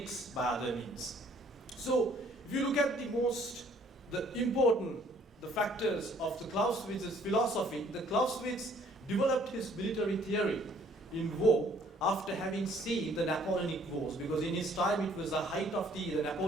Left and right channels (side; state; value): both; normal; correlation 0.60